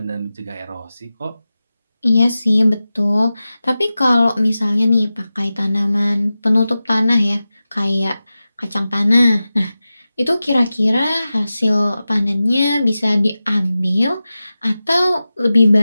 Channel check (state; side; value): inverted; both; correlation -0.94